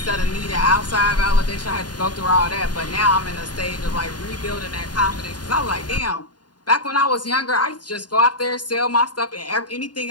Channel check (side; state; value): right; late; 0.70 ms